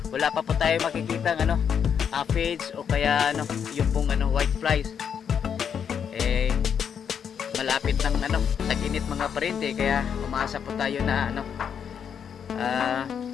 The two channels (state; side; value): quieter; right; 7.7 dB